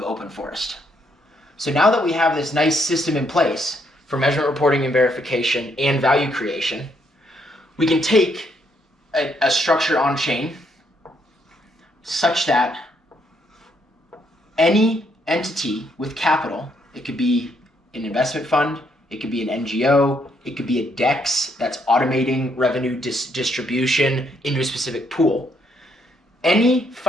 Open Forest. So now that we have this nice system in place for measurement reporting and verification and value creation, we can take a structure on chain such that any entity with capital, it could be an investment fund, it could be an NGO, it could be a DEX that's automating revenue distribution into a specific pool. Any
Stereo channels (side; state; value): both; normal; correlation 0.73